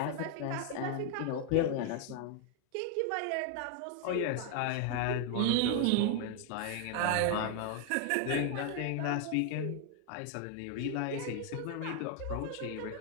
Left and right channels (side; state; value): both; different; correlation 0.00